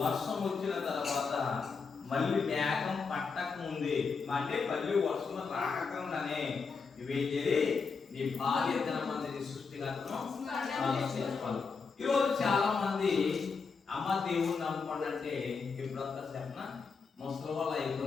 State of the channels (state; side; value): quieter; right; 5.1 dB